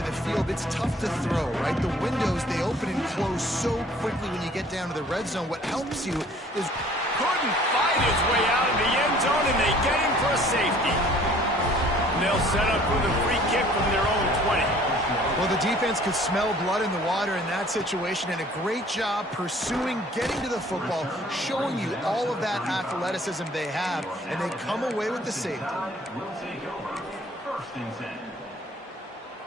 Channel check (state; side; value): normal; both; correlation 0.54